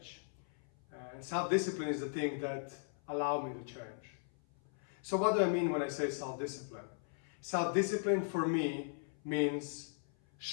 And self-discipline is the thing that allowed me to change. So what do I mean when I say self-discipline? Self-discipline for me means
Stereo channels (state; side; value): silent; right; 52 dB below the other